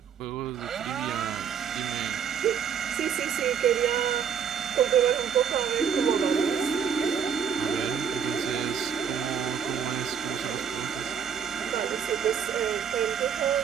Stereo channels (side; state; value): left; quieter; 7.6 dB